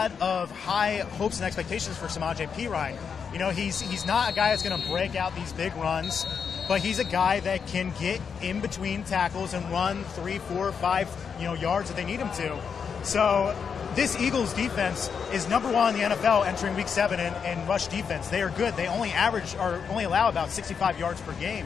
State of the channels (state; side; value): quieter; right; 6.5 dB